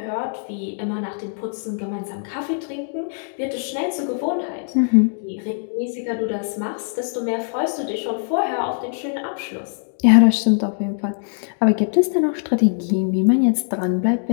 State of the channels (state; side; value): silent; right; digital silence